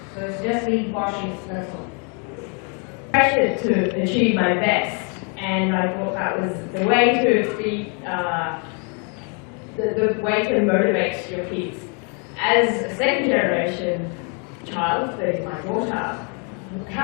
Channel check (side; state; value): right; quieter; 37.0 dB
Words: So it's just being cautious, that's all. Pressured to achieve my best, and I thought that was the way to be, the way to motivate your kids. As a second generation child, that is my daughter,